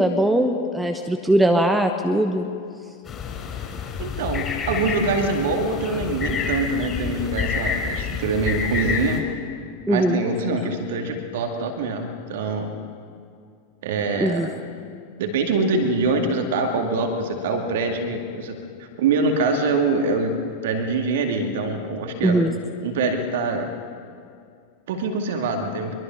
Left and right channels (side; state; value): both; normal; correlation 0.15